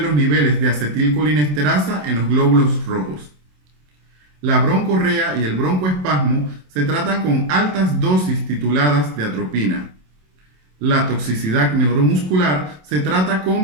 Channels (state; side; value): late; left; 27 ms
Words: los niveles de acetilcolinesterasa en los glóbulos rojos. La broncorrea y el broncoespasmo se tratan con altas dosis tituladas de atropina. La toxicidad neuromuscular se trata